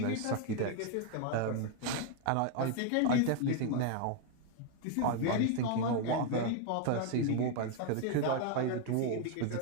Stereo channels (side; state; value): both; different; correlation 0.01